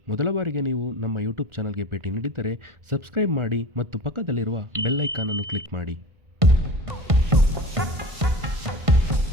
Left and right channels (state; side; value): late; left; 1.5 ms